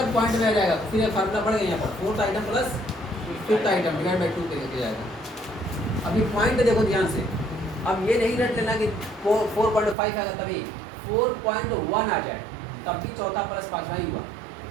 पॉइंट में आ जाएगा तो फिर ये फार्मूला पड़ेगा यहाँ पर 4th item plus 5th item divide by 2 करके जाएगा। अभी पॉइंट देखो ध्यान से, अब ये नहीं रट लेना कि 4.5 आएगा तभी, 4.1 आ जाए तब भी चौथा प्लस पांचवा ही हुआ।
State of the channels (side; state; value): left; drops out; at 10.0 s